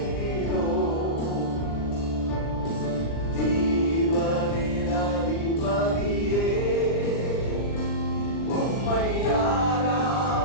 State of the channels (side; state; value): right; late; 39 ms